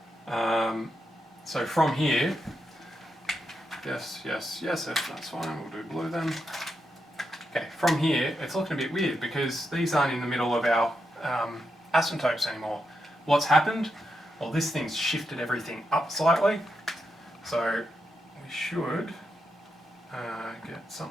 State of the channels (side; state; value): both; normal; correlation 0.84